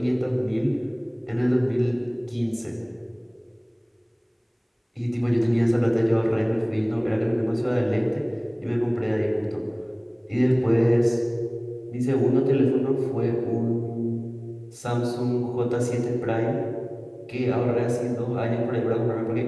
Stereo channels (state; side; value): identical; both; correlation 1.00